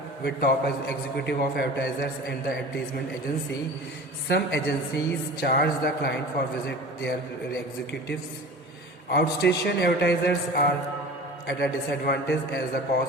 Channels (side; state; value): both; normal; correlation 0.38